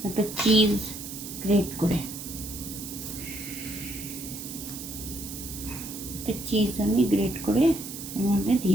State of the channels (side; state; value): right; noise; hiss, 10 dB below the sound